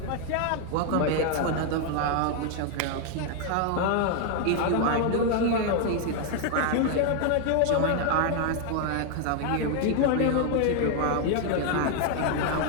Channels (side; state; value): both; different; correlation 0.00